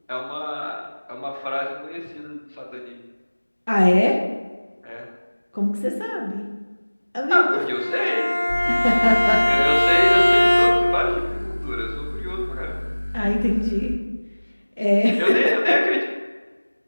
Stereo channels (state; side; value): inverted; both; correlation -1.00